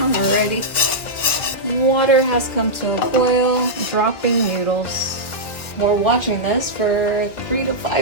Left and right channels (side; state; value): right; late; 1.8 ms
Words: already. Water has come to a boil, dropping noodles. We're watching this for 3 to